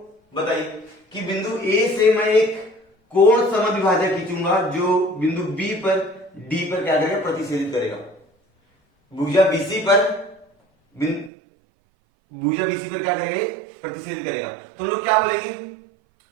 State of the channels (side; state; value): left; drops out; at 11.3 s